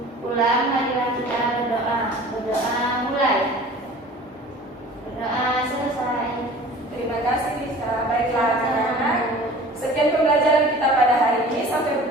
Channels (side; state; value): both; normal; correlation 0.44